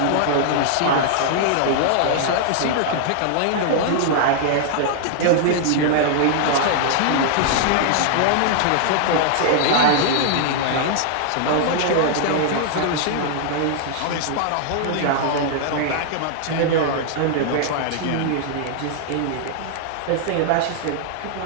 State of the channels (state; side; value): different; both; correlation -0.01